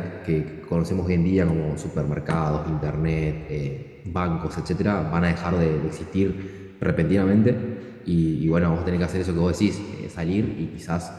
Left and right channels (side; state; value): both; identical; correlation 1.00